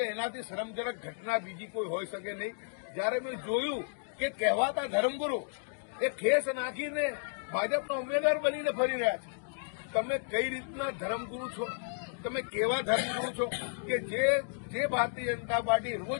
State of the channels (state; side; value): silent; right; digital silence